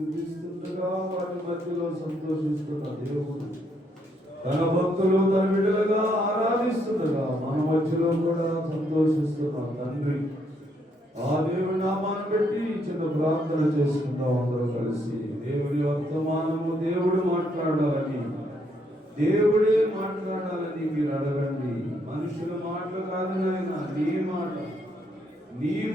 వారి మధ్యలో సంతోషిస్తున్న దేవుడు తన భక్తులు తన బిడ్డలుగా ఆరాధిస్తుండగా మన మధ్యలో కూడా సంతోషిస్తున్న తండ్రి ఆ దేవుని నామాన్ని పెట్టి చిన్న ప్రార్థన చేసుకుందాం అందరూ కలిసి. దేవుని వర్తమానము దేవుడు మాట్లాడాలని, దేవుడే మాట్లాడాలని మీరు అడగండి. మనుషుల మాటలు కాదు నాయన, నీ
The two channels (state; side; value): normal; both; correlation 0.73